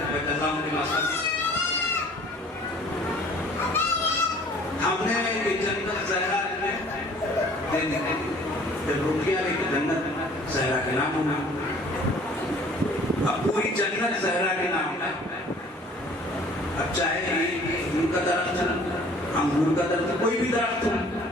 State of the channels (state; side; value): normal; both; correlation 0.52